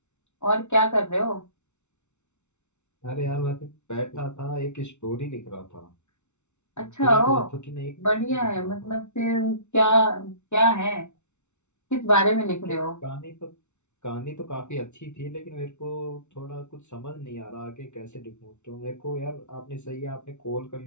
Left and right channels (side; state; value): right; late; 0.83 ms